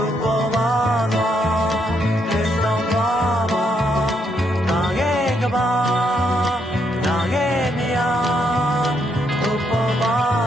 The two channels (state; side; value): normal; both; correlation 0.75